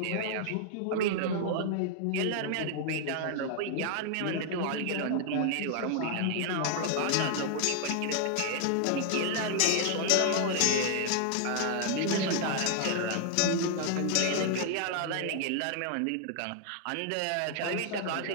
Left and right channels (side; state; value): both; different; correlation 0.00